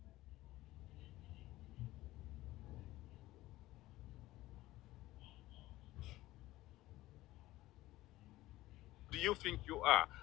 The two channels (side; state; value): right; quieter; 17.1 dB